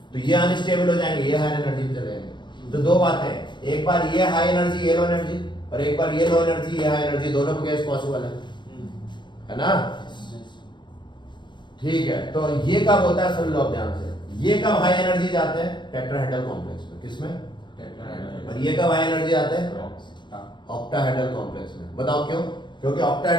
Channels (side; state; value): right; late; 0.22 ms